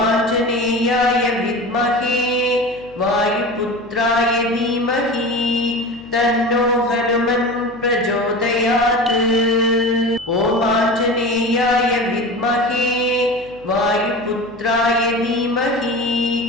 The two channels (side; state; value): left; noise; hum, 24 dB below the sound